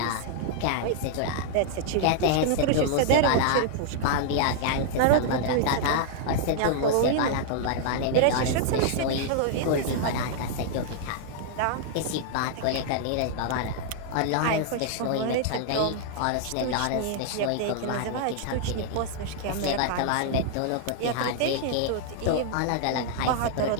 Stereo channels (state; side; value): different; both; correlation -0.01